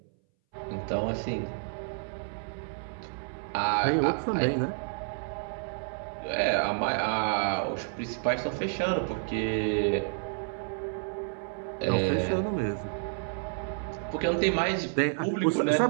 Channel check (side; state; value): left; silent; 58 dB below the other